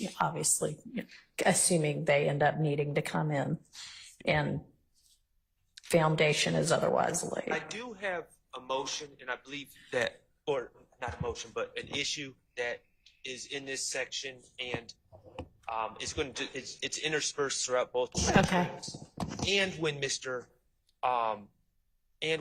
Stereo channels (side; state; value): both; identical; correlation 1.00